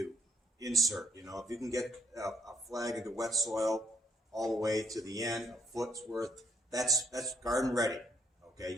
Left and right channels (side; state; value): both; normal; correlation 0.67